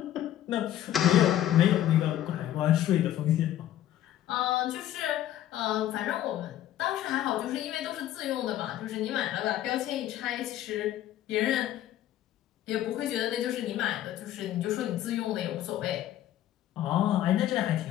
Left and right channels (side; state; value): right; quieter; 12.5 dB